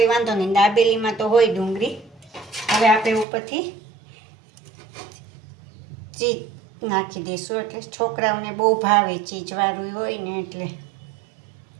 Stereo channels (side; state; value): left; drops out; at 3.2 s